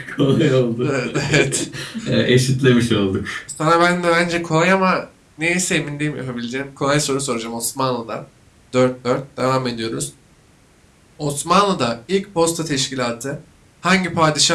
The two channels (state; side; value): identical; both; correlation 1.00